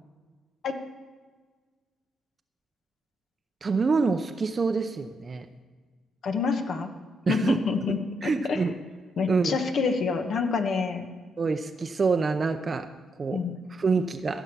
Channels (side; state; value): both; normal; correlation 0.78